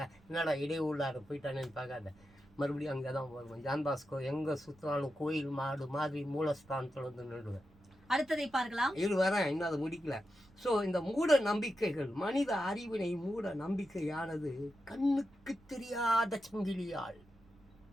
என்னடா இடையூள்ளார போயிட்டானேன்னு பார்க்காத, மறுபடியும் அங்கே தான் வருவோம். ஜான் பாஸ்கோ எங்கே சுற்றினாலும் கோயில் மாடு மாதிரி மூலஸ்தானத்தில் வந்து நின்றுவேன். அடுத்ததை பார்க்கலாம். இது வரேன், இன்னும் அதை முடிக்கல. ஸோ இந்த மூட நம்பிக்கைகள், மனித அறிவினை மூட நம்பிக்கையானது கண்ணுக்கு தெரியாத சங்கிலியால்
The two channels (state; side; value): noise; right; rumble, 27 dB below the sound